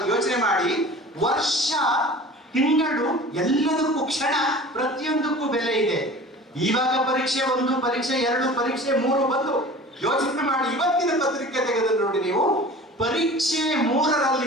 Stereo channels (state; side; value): normal; both; correlation 0.41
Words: ಯೋಚನೆ ಮಾಡಿ. ವರ್ಷ, ತಿಂಗಳು, ಎಲ್ಲದಕ್ಕೂ ಕ್ಷಣ, ಪ್ರತಿಯೊಂದಕ್ಕೂ ಬೆಲೆ ಇದೆ. ಇವಾಗ ಪರೀಕ್ಷೆ 1, ಪರೀಕ್ಷೆ 2, ಪರೀಕ್ಷೆ 3 ಬಂದು ಯೋಚನೆ ಮಾಡಿ. ಇವತ್ತಿನ ಪತ್ರಿಕೆ ತೆಗೆದು ನೋಡಿ ನೀವು, ಪರೀಕ್ಷೆ